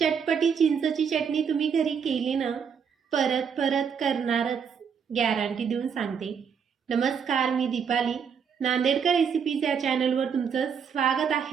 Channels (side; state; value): left; quieter; 6.9 dB